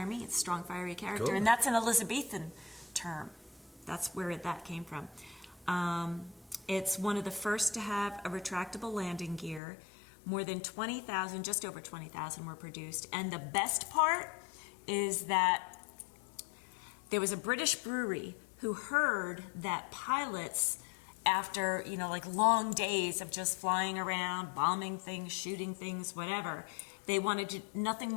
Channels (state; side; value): drops out; right; at 9.6 s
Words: means, strong, fiery character. Cool. And that's an Elizabethan term. That's where that came from. It's one of the first to have a retractable landing gear. More than 20,000, just over 20,000 were produced. And the best part is that there was a British brewery who heard that pilots, after, long days of just flying around, bombing things, shooting things, whatever, they wanted nothing